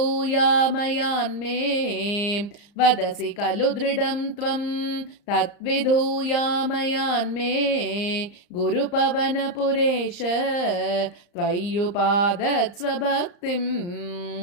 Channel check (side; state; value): right; late; 34 ms